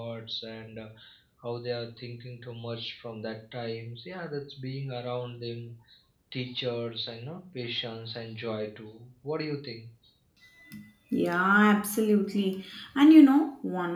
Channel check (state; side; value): identical; both; correlation 1.00